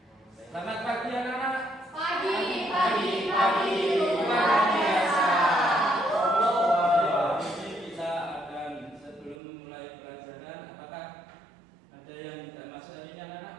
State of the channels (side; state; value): left; drops out; at 9.3 s